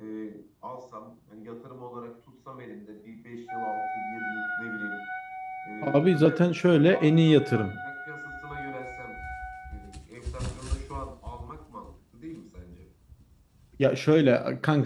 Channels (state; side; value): identical; both; correlation 1.00